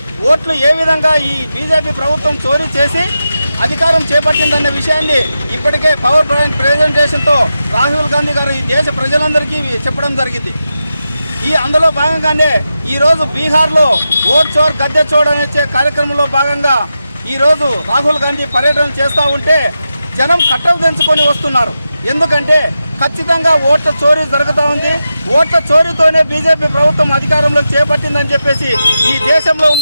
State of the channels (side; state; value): both; inverted; correlation -0.90